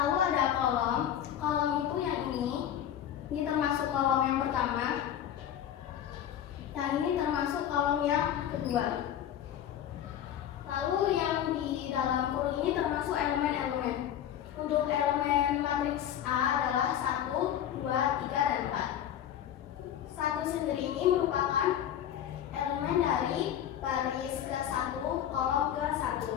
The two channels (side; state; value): right; quieter; 10.4 dB